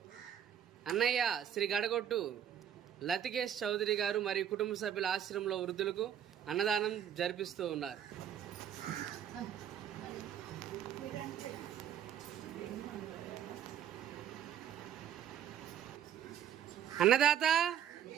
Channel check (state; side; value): quieter; left; 9.6 dB